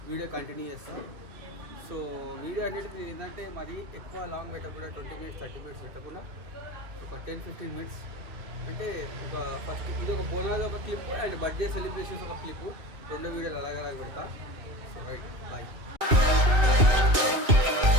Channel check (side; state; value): left; late; 2.6 ms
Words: వీడియో కంటిన్యూ చేస్తాను. సో వీడియో అనేది ఏంటంటే మరి ఎక్కువ లాంగ్ పెట్టకుండా 20 minutes 30 minutes పెట్టకుండా ఒక 10-15 minutes అంటే ఒక ఫస్ట్ ఇది ఒక బోనాలు ఒక క్లిప్ అండ్ బర్త్డే సెలబ్రేషన్స్ ఒక క్లిప్, 2 వీడియోలు అలాగ పెడతా. So right bye.